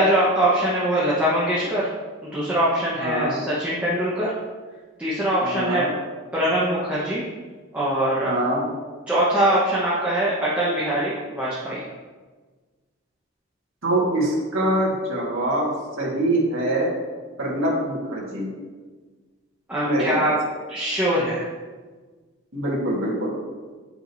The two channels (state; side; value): normal; both; correlation 0.22